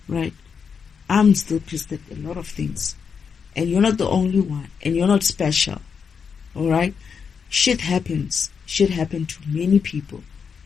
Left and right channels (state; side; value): quieter; right; 6.3 dB